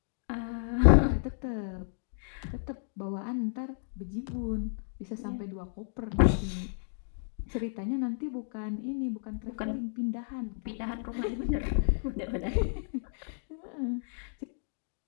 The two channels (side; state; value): right; silent; digital silence